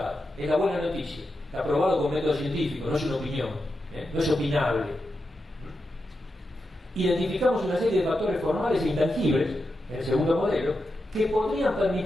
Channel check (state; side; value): normal; both; correlation 0.88